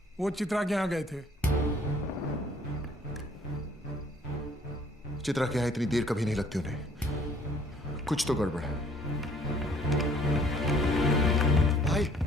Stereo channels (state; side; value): normal; both; correlation 0.58